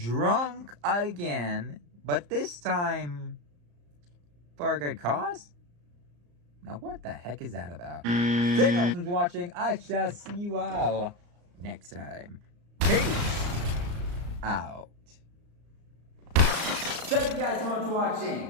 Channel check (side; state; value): left; late; 34 ms